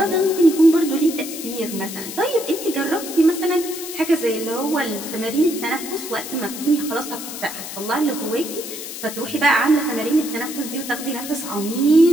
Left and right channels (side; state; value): left; noise; hiss, 9 dB below the sound